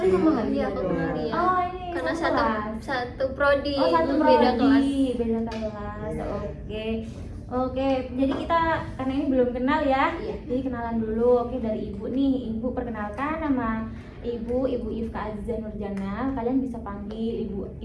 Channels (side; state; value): both; identical; correlation 1.00